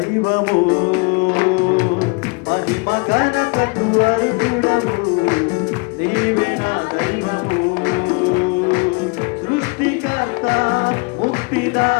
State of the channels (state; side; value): quieter; right; 31.7 dB